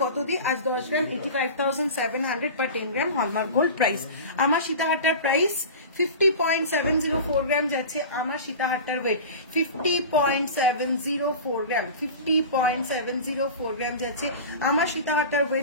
কত দিই? আজ 10 গ্রাম 85,700 পার 10 গ্রাম হলমার্ক গোল্ড প্রাইস। আমার সীতাহারটার প্রাইস 50.704 গ্রাম যাচ্ছে, আমার সীতাহারটার ওয়েট 50.704 গ্রাম, 50.704 গ্রাম যাচ্ছে আমার সীতাহারটার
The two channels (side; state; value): both; inverted; correlation -0.33